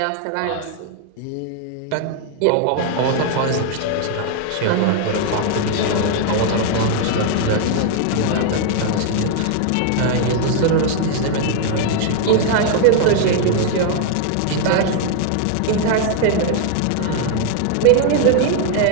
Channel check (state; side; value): different; both; correlation 0.00